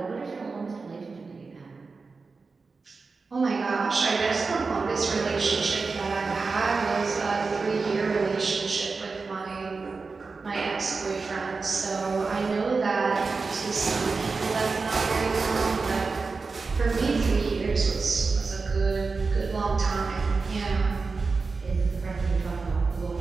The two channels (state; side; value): quieter; left; 4.3 dB